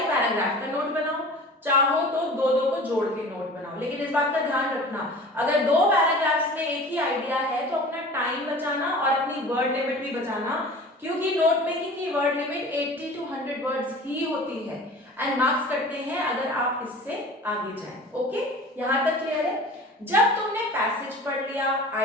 पैराग्राफ का नोट बनाओ, चाहो तो दो दो को जोड़ के नोट बनाओ, लेकिन इस बात का ध्यान रखना अगर दो पैराग्राफ्स में एक ही आइडिया है तो अपना टाइम बचाना और अपनी वर्ड लिमिट भी बचाना, क्योंकि नोट मेकिंग की वर्ड लिमिट 80 to 100 वर्ड्स ही होती है एंड मार्क्स कटते हैं अगर आप इससे आगे जाएं। ओके, यहां तक क्लियर है? जब तुमने पैसेज पढ़ लिया,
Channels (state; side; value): normal; both; correlation 0.40